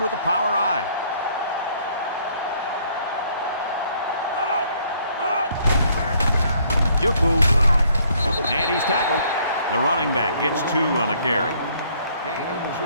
with the power I. Juku. And he's tackled. The running back gets 2 on the carry. Gain of 2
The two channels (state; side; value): inverted; both; correlation -0.64